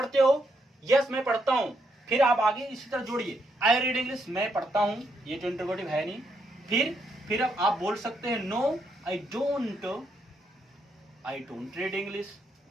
हो? यस मैं पढ़ता हूं। फिर आप आगे इसी तरह जोड़िए, आई रीड इंग्लिश, मैं पढ़ता हूं, ये तो इंटरोगेटिव है नहीं। फिर अब आप बोल सकते हैं no I don't read English.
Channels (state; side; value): normal; both; correlation 0.77